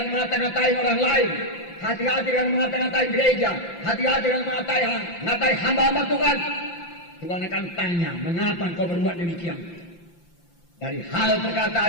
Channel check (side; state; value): right; late; 5.8 ms